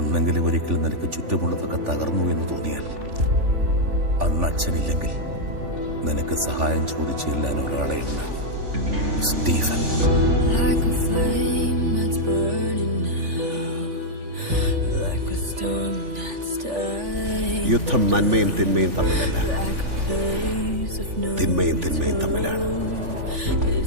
ഒരിക്കൽ നിനക്ക് ചുറ്റുമുള്ളതൊക്കെ തകർന്നു എന്ന് തോന്നിയാൽ അന്ന് അച്ഛനില്ലെങ്കിൽ നിനക്ക് സഹായം ചോദിച്ചു ചെല്ലാൻ ഒരാളെ ഉണ്ട്, സ്റ്റീഫൻ. യുദ്ധം നന്മയും തിന്മയും തമ്മിലല്ല, തിന്മയും തിന്മയും തമ്മിലാണ്.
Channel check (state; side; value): late; left; 3.4 ms